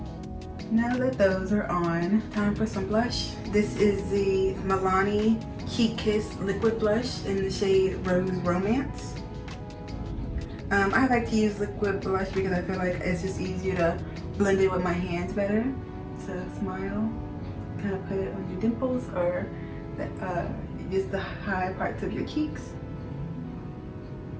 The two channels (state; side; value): identical; both; correlation 1.00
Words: now that those are on, time for some blush. This is the Milani Heat Kiss Liquid Blush in the shade Rose Romance. I like to use liquid blush because I feel like it's just easier to blend it with my hands better. So smile, kind of put it on your dimples or just the high parts of your cheeks.